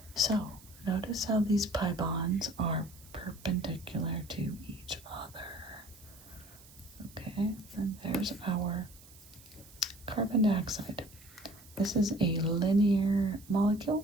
so notice how these pi bonds are perpendicular to each other. Okay, and there's our carbon dioxide. This is a linear molecule,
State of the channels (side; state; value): right; noise; hiss, 22 dB below the sound